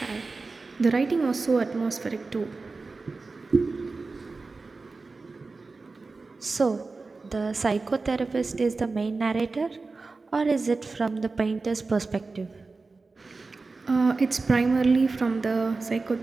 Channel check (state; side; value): quieter; left; 3.9 dB